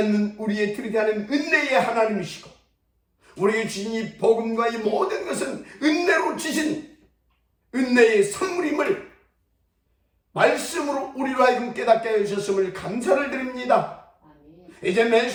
우리의 들이대하는 은혜의 하나님이시고 우리에게 주신 이 복음과 이 모든 것은 은혜로 주신 은혜의 선물임을 말씀으로 우리로 하여금 깨닫게 해주셨음을 감사를 드립니다. 이제 매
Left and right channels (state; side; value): identical; both; correlation 1.00